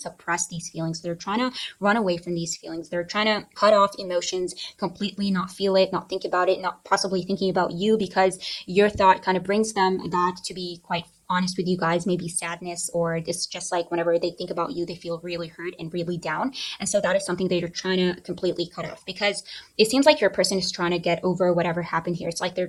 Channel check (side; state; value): both; identical; correlation 1.00